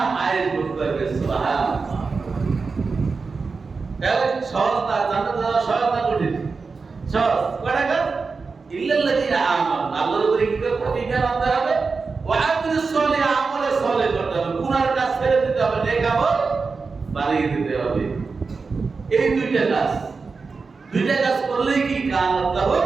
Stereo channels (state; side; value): quieter; left; 4.6 dB